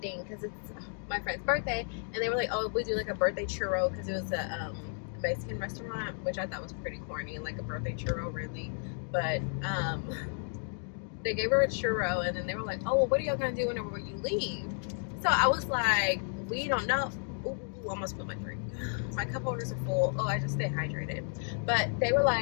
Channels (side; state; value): right; silent; 56 dB below the other